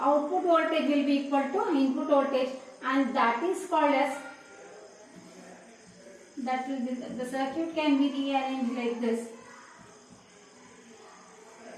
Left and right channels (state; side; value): identical; both; correlation 1.00